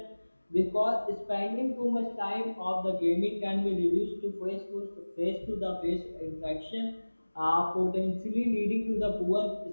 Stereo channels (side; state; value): both; inverted; correlation -1.00